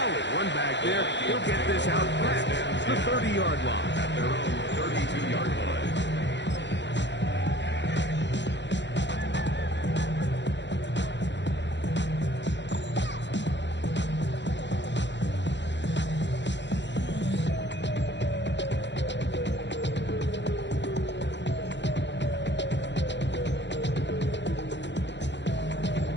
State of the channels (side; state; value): right; late; 0.52 ms